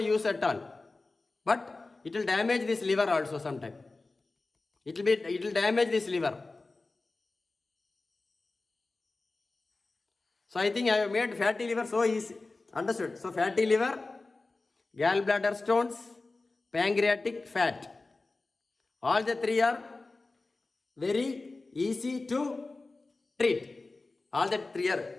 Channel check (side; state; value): right; quieter; 3.4 dB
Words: at all. But it will damage this liver also sometime. It will damage this liver. So I think I have made fatty liver so easy. Understood? So fatty liver, gallbladder stones, pancreatic fat. All the three are very easy to treat. All the three